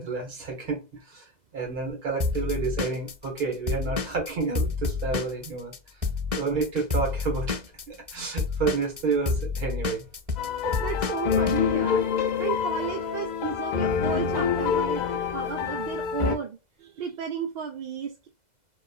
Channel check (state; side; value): late; left; 2.0 ms